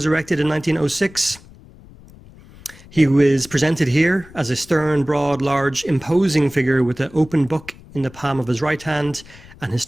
erected in 1906. He was presented here as a stern, broad, large, imposing figure with an open book in the palm of his right hand and his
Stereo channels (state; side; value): noise; left; rumble, 22 dB below the sound